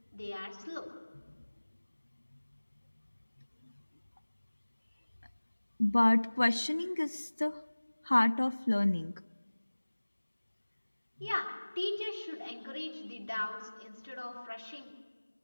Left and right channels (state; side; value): inverted; both; correlation -1.00